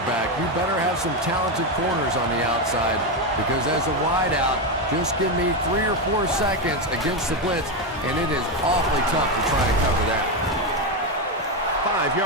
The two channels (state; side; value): normal; both; correlation 0.09